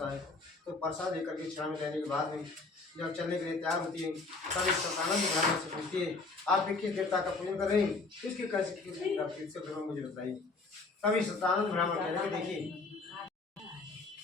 है तो प्रसाद लेकर के क्षण में लेने के बाद में जब चलने के लिए तैयार होती है तब इस सतानंद ब्राह्मण से पूछती है आप किस देवता का पूजन कर रहे हैं इसके कैसे मुझे बताइए तभी सतानंद ब्राह्मण कहने में देखिए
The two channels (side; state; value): right; quieter; 3.7 dB